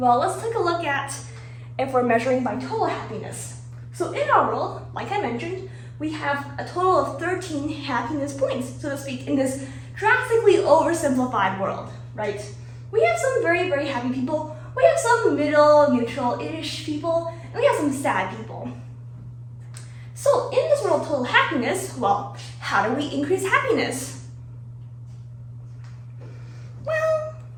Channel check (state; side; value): identical; both; correlation 1.00